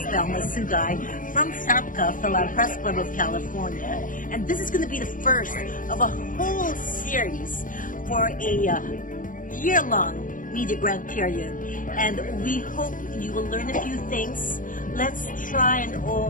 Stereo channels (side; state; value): right; late; 0.39 ms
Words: Thelma Sugay from Fapcca, Philad Press Club of California, and this is going to be the first of a whole series for a year-long media grant period, and we hope you will learn a few things. Let's try and